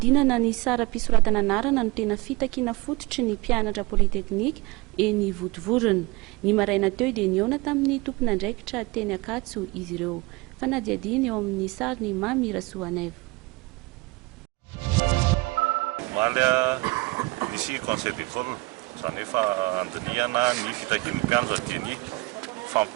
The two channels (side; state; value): left; quieter; 23.7 dB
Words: ny sara mpisoratana anarana no tena fitakiana fototry ny mpianatra politeknika eny Votovorona. Ny maraina teo dia niona tamin'ny tompon'andraikitra teny Akatso izy ireo. Fanadiadiny eo amin'ny sary ny Mamy Rasoaneva. Malia nisy conseil d'école zany efa andiniana ny fitakian'ny mpianatra dia ny